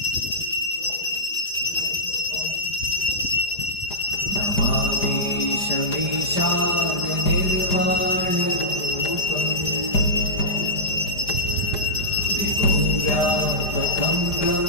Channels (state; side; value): late; right; 5.0 ms